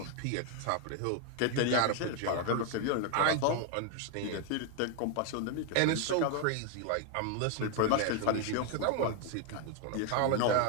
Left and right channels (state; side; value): different; both; correlation 0.00